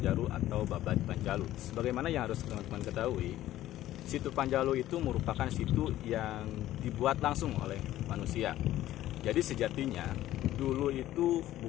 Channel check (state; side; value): quieter; right; 14.0 dB